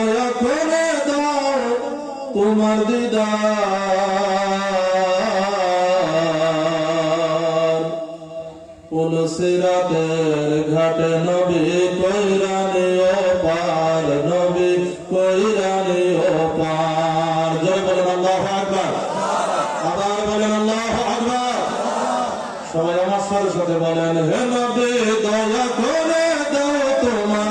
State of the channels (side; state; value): both; identical; correlation 1.00